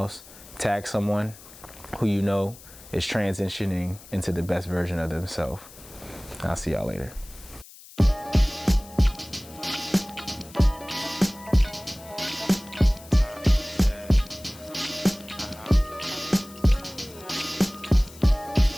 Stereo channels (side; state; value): left; noise; hiss, 20 dB below the sound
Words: tag someone who you know is transitioning into the best version of themselves. I'll see y'all later.